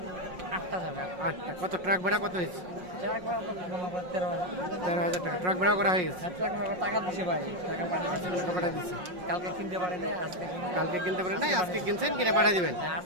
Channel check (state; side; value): late; left; 5.5 ms